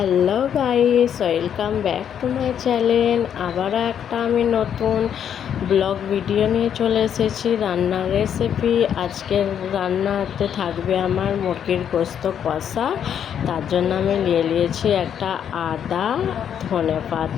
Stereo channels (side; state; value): right; quieter; 8.8 dB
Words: guys, welcome back to my channel. আবারও একটা আমি নতুন ব্লগ ভিডিও নিয়ে চলে এসেছি রান্নার রেসিপি। আজকের রান্নাতে থাকবে আমার মুরগির গোস্ত কষা। তার জন্য আমি নিয়েছি একটা আদা,